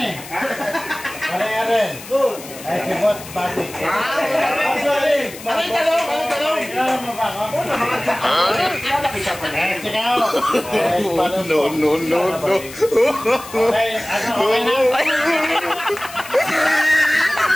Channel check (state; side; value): noise; left; hiss, 15 dB below the sound